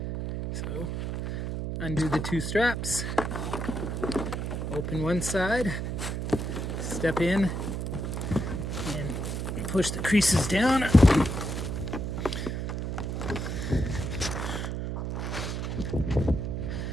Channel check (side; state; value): right; noise; hum, 3 dB below the sound